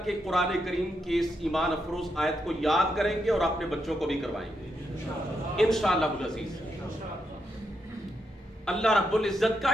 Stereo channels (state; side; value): normal; both; correlation 0.82